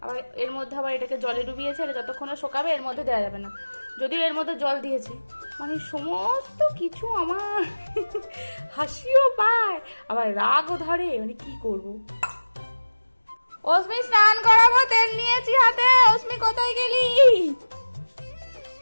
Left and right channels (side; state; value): both; inverted; correlation -1.00